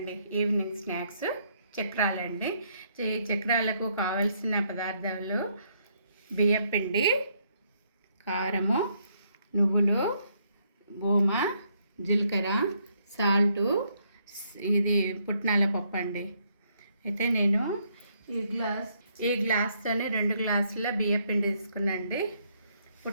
ఈవినింగ్ స్నాక్స్ చక్రాలండి. చక్రాలకు కావలసిన పదార్థాలు బియ్యపిండి, కారము, నువ్వులు, ఓమ, జీలకర్ర, సాల్టు, ఇది పుట్నాల పప్పు అండి. అయితే నేను ఈ గ్లాస్తోనే 2 గ్లాసుల బియ్యపిండి తీసుకున్నాండి.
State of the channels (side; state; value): both; inverted; correlation -0.72